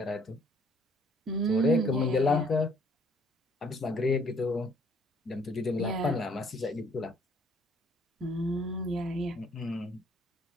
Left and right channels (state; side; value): normal; both; correlation 0.62